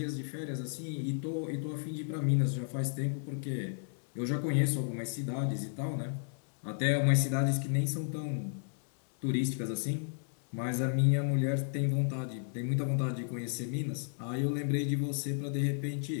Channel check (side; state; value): right; silent; digital silence